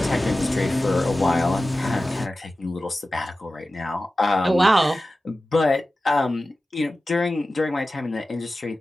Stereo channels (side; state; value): both; normal; correlation 0.95